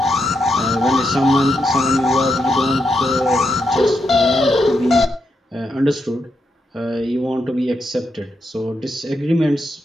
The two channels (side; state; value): both; normal; correlation 0.82